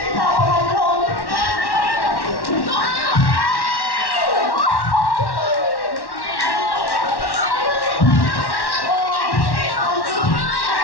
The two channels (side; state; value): right; late; 1.1 ms